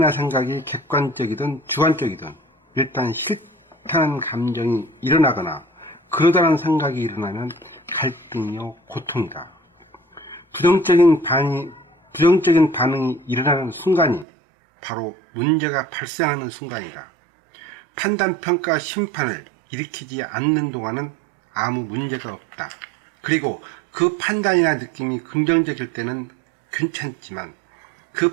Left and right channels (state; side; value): drops out; left; at 14.2 s